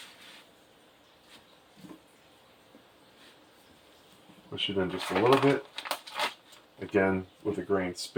Push it in just a little bit. Again, with a grain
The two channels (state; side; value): identical; both; correlation 1.00